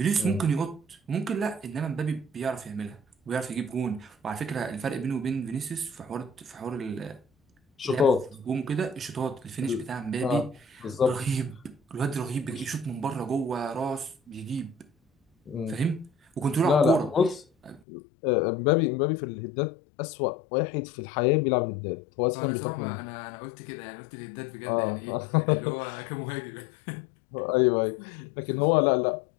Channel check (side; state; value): right; drops out; at 17.8 s